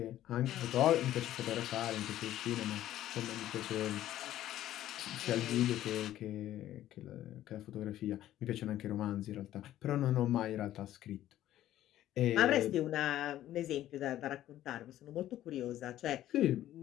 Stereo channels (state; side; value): quieter; right; 13.1 dB